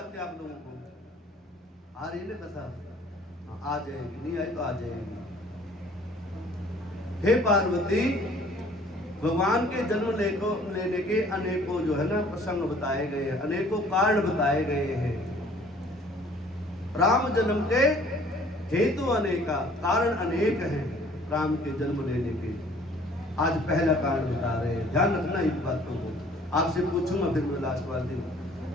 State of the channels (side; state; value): both; normal; correlation 0.54